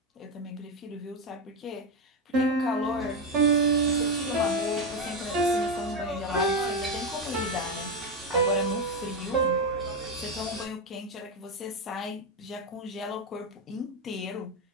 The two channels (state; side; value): normal; both; correlation 0.10